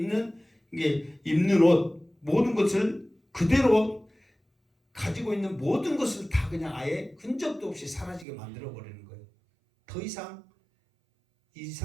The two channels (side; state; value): left; drops out; at 8.2 s